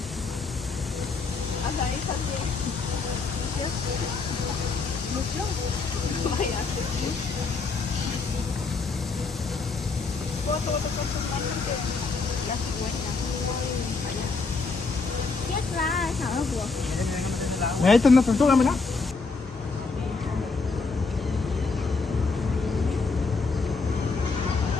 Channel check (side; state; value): right; quieter; 4.3 dB